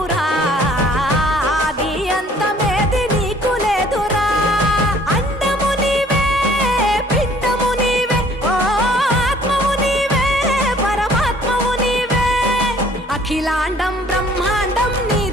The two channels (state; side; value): normal; both; correlation 0.56